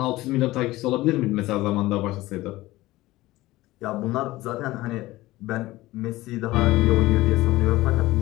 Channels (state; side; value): quieter; right; 18.1 dB